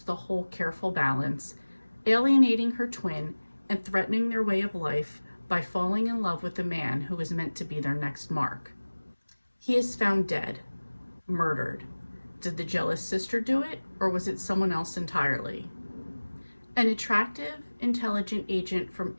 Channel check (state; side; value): inverted; both; correlation -1.00